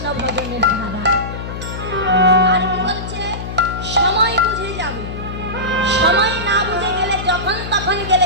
ভজনের ধারা। আর কি বলছে? সময় বুঝে যাবে। সময় না বুঝে গেলে যখন তখন গেলে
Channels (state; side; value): noise; left; hum, 7 dB below the sound